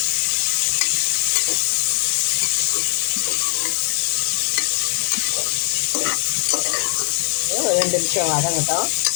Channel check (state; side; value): silent; right; 66 dB below the other